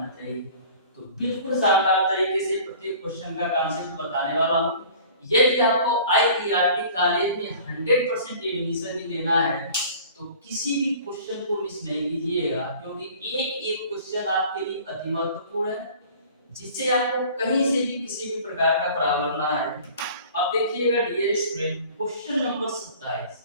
चाहिए। तो बिल्कुल शानदार तरीके से प्रत्येक क्वेश्चन का कॉन्सेप्ट बताने वाला हूं। यदि आपको आईईआरटी कॉलेज में 100% एडमिशन ही लेना है तो किसी भी क्वेश्चन को मिस नहीं कीजिएगा, क्योंकि एक एक क्वेश्चन आपके लिए अति महत्वपूर्ण है, जिससे आपको कहीं से भी किसी भी प्रकार का प्रॉब्लम ना आए। अब देखिएगा डियर स्टूडेंट क्वेश्चन नंबर 27।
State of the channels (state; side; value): inverted; both; correlation -0.46